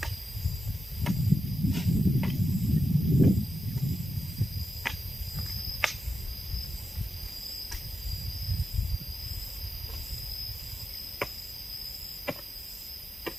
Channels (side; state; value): both; normal; correlation 0.89